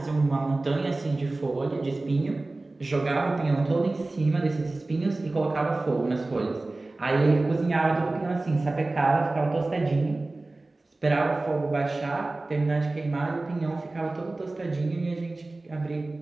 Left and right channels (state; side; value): quieter; left; 3.0 dB